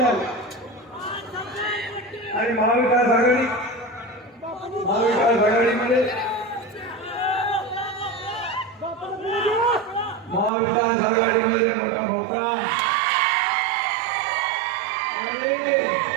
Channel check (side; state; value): left; drops out; at 10.5 s